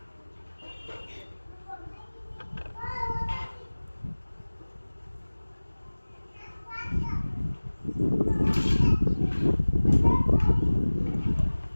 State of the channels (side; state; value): both; inverted; correlation -1.00